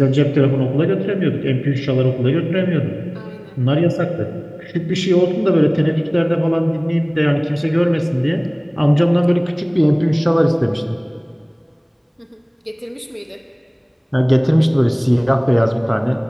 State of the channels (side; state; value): both; identical; correlation 1.00